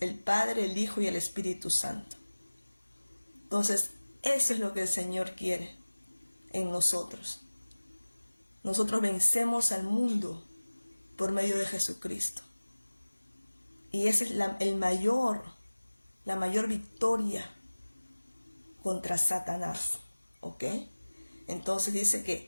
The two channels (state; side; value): inverted; both; correlation -1.00